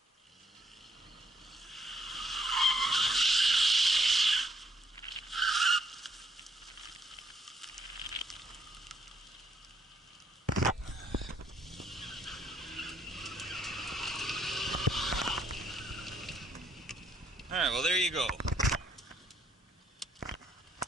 Alright, well there you go.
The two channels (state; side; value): normal; both; correlation 0.70